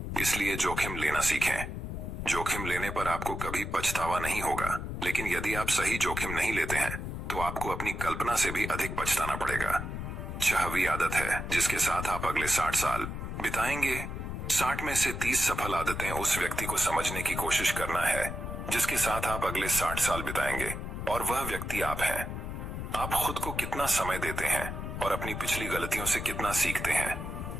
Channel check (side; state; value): left; noise; rumble, 5 dB below the sound